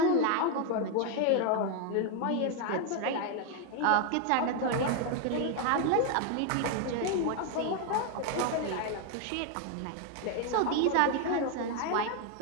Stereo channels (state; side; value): different; both; correlation 0.01